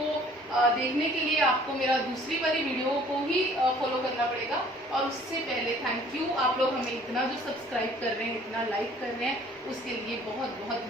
देखने के लिए आपको मेरा दूसरी वाली वीडियो को ही फॉलो करना पड़ेगा। और उससे पहले थैंक यू, आप लोग हमें इतना जो सब्सक्राइब कर रहे हैं, इतना लाइक कर रहे हैं, उसके लिए बहुत बहुत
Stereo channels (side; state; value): both; normal; correlation 0.54